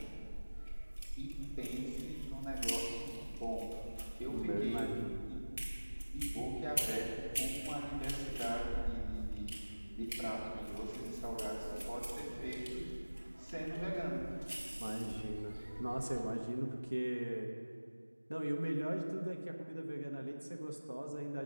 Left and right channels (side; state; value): both; inverted; correlation -1.00